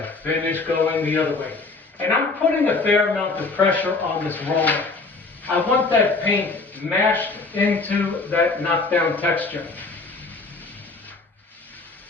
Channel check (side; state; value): right; quieter; 3.8 dB